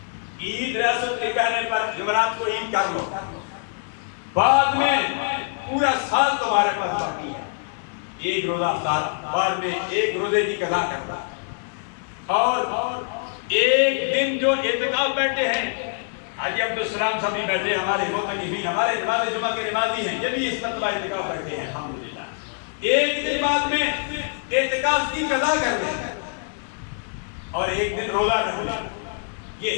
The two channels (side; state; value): right; silent; 60 dB below the other